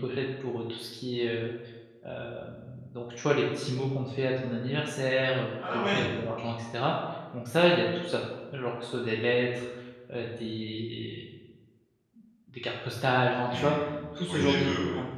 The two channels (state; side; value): identical; both; correlation 1.00